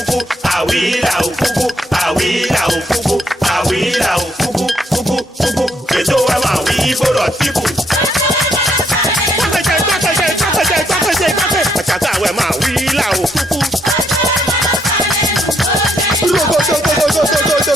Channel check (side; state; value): both; normal; correlation 0.73